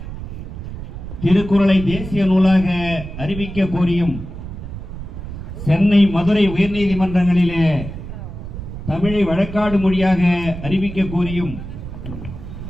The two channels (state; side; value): noise; right; rumble, 9 dB below the sound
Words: திருக்குறளை தேசிய நூலாக அறிவிக்க கோரியும் சென்னை மதுரை உயர்நீதிமன்றங்களிலே தமிழை வழக்காடு மொழியாக அறிவிக்க கோரியும்